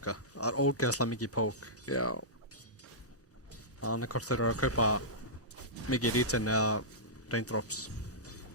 Það er ógeðslega mikið poke. Já. Þannig hvort þeir eru að kaupa mikið regen eða raindrops.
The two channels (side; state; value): both; normal; correlation -0.15